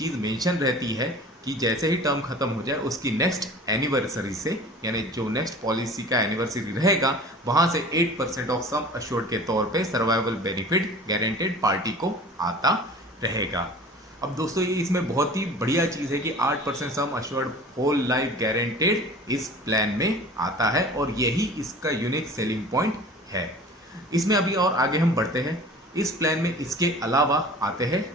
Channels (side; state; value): both; normal; correlation 0.42